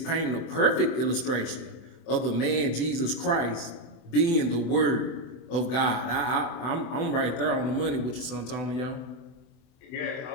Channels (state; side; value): late; right; 24 ms